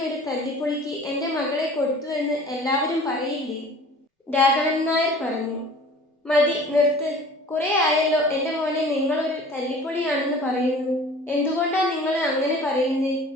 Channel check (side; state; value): both; normal; correlation 0.46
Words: ഒരു തല്ലിപ്പൊളിക്ക് എൻ്റെ മകളെ കൊടുത്തു എന്ന് എല്ലാവരും പറയില്ലേ? രാഘവൻ നായർ പറഞ്ഞു. മതി, നിർത്ത്. കുറെ ആയല്ലോ എൻ്റെ മോനെ നിങ്ങളൊരു തല്ലിപ്പൊളിയാണെന്ന് പറയുന്നു. എന്തുകൊണ്ടാ നിങ്ങൾ അങ്ങനെ പറയുന്നേ?